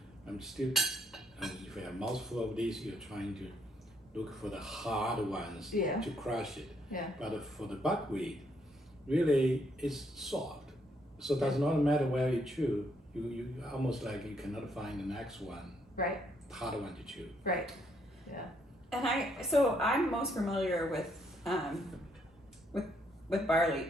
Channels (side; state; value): both; normal; correlation 0.72